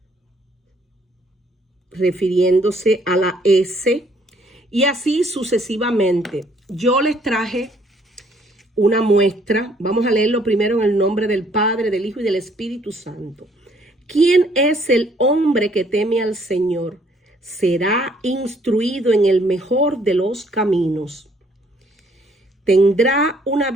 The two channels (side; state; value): both; normal; correlation 0.64